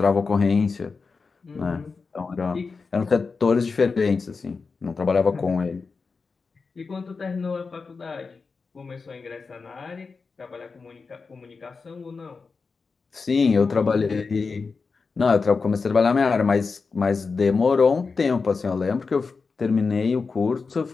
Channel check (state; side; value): quieter; right; 4.7 dB